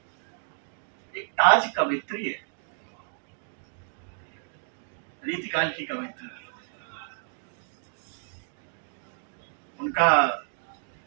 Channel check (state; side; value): silent; left; digital silence